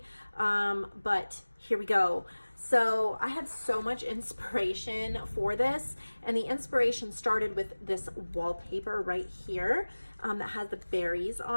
but here we go. So I had so much inspiration for this, and the inspiration started with this wallpaper right here that has the berries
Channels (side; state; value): both; inverted; correlation -1.00